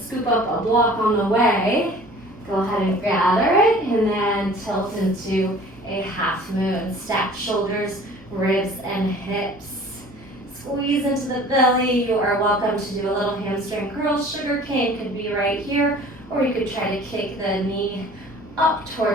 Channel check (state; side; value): normal; both; correlation 0.47